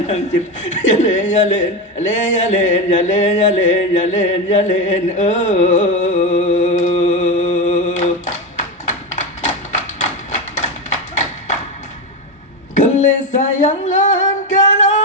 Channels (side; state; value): both; normal; correlation 0.15